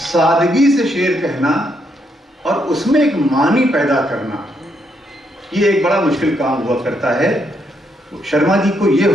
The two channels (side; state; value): both; normal; correlation 0.76